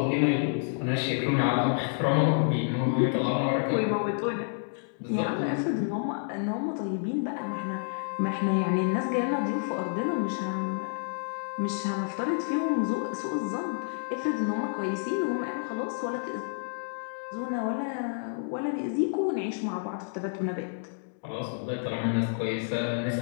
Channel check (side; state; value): right; silent; digital silence